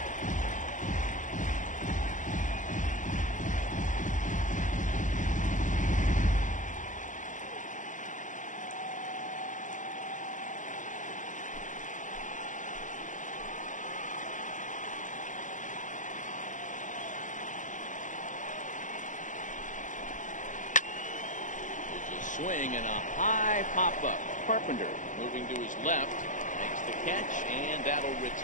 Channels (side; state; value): right; late; 0.37 ms